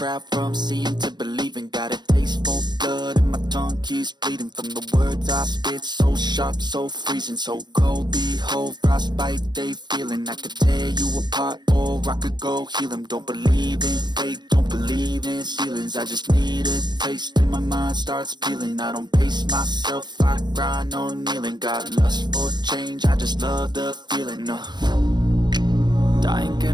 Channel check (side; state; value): left; late; 0.21 ms